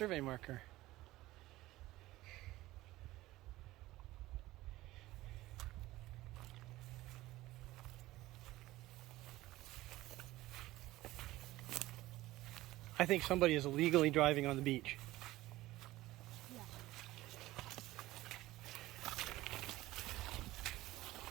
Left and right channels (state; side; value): quieter; left; 17.3 dB